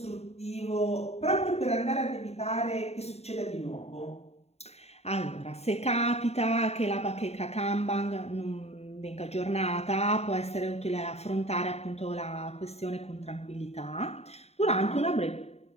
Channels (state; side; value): late; right; 0.31 ms